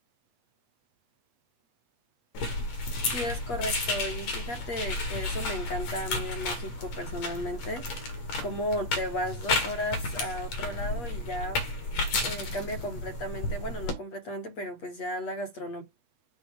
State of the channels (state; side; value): late; right; 8.6 ms